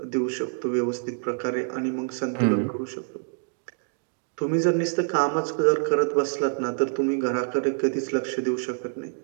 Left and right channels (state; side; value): silent; left; digital silence